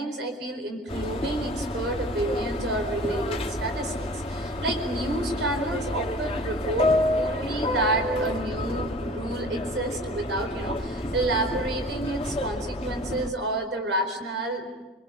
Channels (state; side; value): normal; both; correlation 0.42